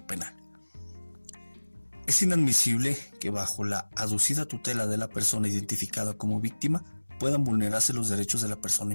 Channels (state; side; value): inverted; both; correlation -1.00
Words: penal. Es inadmisible que bajo la aducida tutela de la persona identificada como víctima puedan vulnerarse los derechos de la persona